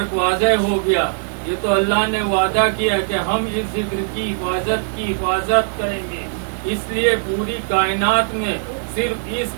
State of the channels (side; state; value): left; silent; 62 dB below the other